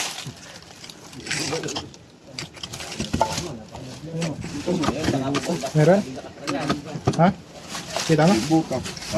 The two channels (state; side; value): identical; both; correlation 1.00